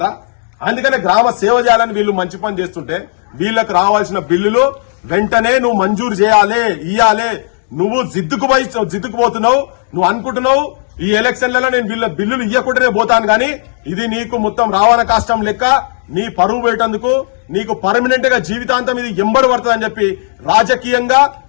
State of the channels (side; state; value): right; silent; digital silence